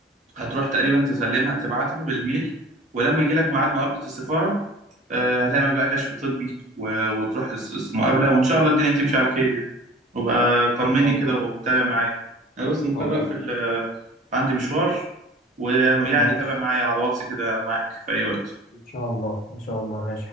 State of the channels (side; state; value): both; normal; correlation 0.44